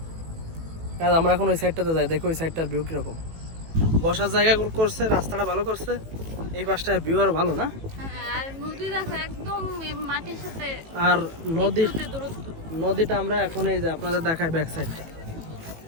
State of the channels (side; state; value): left; late; 18 ms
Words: আমরা এখন ওই সাইডটাতে যাই, দেখো ওই সাইডটার ভিউ কিরকম। বসার জায়গা করছে, রাস্তাটা ভালো করছে, এই পাশটার ভিউ আর ভালো না। আর নদী দেখো একদম মাটির সাথে, আর নদীর দূরত্ব নদীটা আমরা এখন এই যে আপনাদের দেখাই ব্যাক সাইডটা,